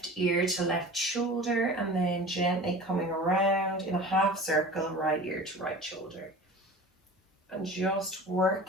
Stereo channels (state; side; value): normal; both; correlation 0.37